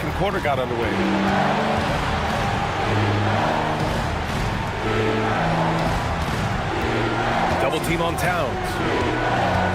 quarter got underway. Double team on Towns.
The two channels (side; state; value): both; identical; correlation 1.00